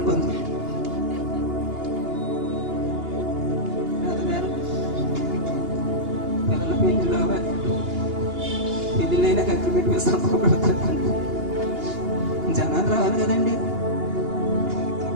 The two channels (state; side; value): late; left; 2.8 ms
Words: బంధు. పెళ్ళిళ్ళైనా అగ్రిమెంట్ మీద సంతకం పెడతారు. జనాలు రావాలి కదండి.